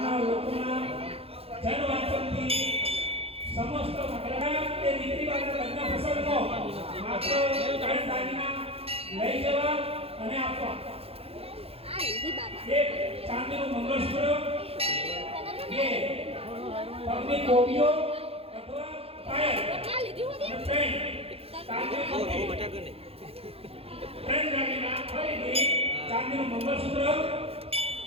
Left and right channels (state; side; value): late; left; 0.28 ms